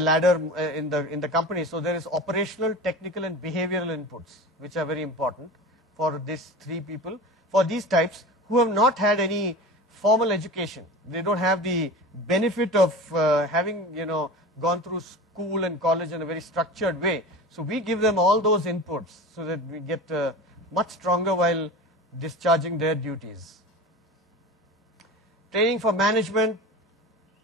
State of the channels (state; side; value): normal; both; correlation 0.32